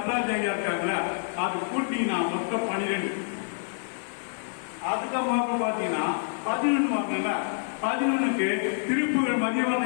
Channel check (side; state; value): right; silent; 55 dB below the other